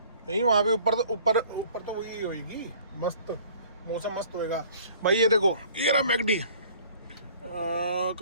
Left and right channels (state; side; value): inverted; both; correlation -0.53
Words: नहीं वहाँ पे ऊपर तो वही होगी, मस्त मौसम मस्त होएगा। भाई ये देखो, ये रहा मैकडी।